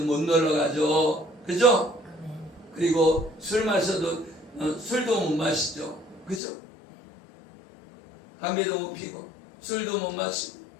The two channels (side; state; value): right; drops out; at 6.4 s